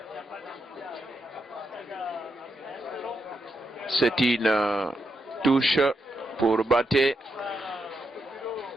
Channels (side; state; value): both; normal; correlation 0.83